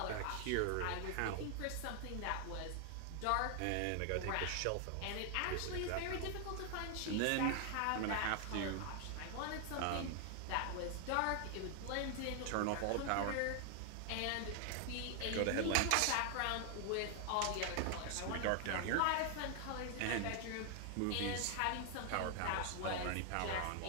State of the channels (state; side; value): different; both; correlation 0.00